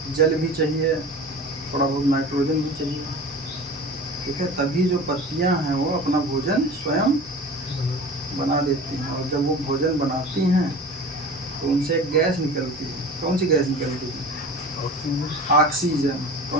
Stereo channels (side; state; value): both; normal; correlation 0.37